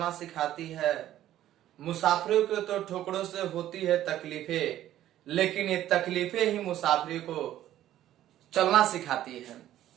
सिखाती है। मुसाफिरों को तो ठोकरों से होती है तकलीफें, लेकिन ये तकलीफें ही मुसाफिरों को चलना सिखाती है।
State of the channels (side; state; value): left; quieter; 12.8 dB